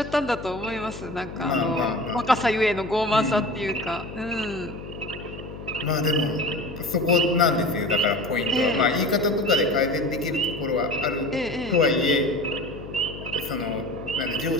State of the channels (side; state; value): left; noise; hum, 12 dB below the sound